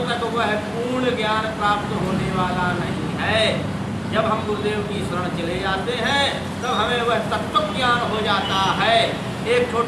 तक वह पूर्ण ज्ञान प्राप्त होने वाला नहीं है। जब हम गुरुदेव की शरण चले जाते हैं तब हमें वह तत्व ज्ञान हो जाता है। एक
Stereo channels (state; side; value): identical; both; correlation 1.00